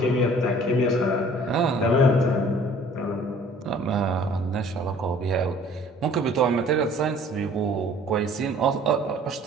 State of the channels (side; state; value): both; normal; correlation 0.53